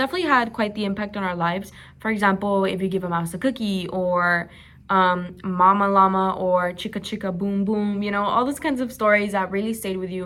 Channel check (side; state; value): both; identical; correlation 1.00